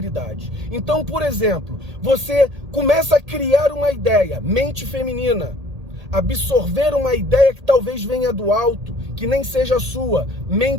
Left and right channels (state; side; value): late; left; 1.8 ms